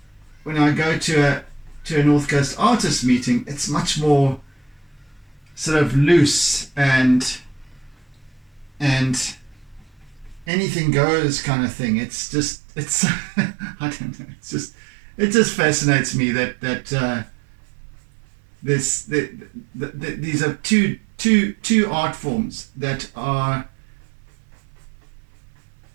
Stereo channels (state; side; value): drops out; left; at 10.5 s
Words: go to a North Coast artist meeting, it's much more sort of loose and anything goes kind of thing. It's I don't know. It just fascinates me that these are two art forms that